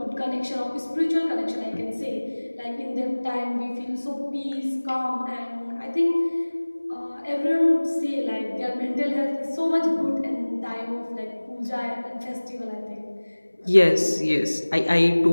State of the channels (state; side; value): inverted; both; correlation -1.00